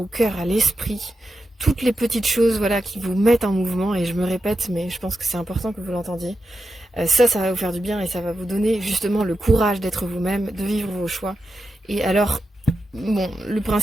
cœur, à l'esprit, toutes les petites choses voilà, qui vous mettent en mouvement, et je me répète, mais je pense que c'est important que vous l'entendiez, ça va vous faire du bien et ça va vous donner justement le courage d'être vous-même, de vivre vos choix. Et alors, bon, le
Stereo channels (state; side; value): normal; both; correlation 0.89